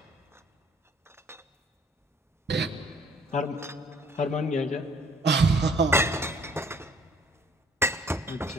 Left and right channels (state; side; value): normal; both; correlation 0.59